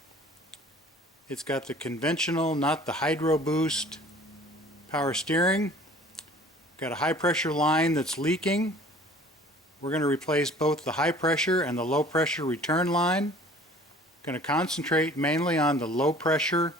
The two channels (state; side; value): normal; both; correlation 0.49